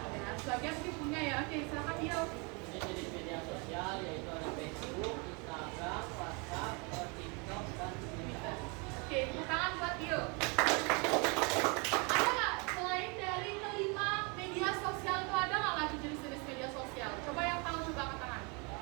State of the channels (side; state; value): left; quieter; 31.4 dB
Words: Ada. Sebagian sih punya ya. Oke, silakan Dio. Jenis media sosial yaitu ada Facebook, Instagram, WhatsApp, TikTok, dan Twitter. Oke, tepuk tangan buat Dio. Ada nggak selain dari kelima media sosial itu ada nggak lagi jenis-jenis media sosial? Coba yang tahu coba angkat tangan.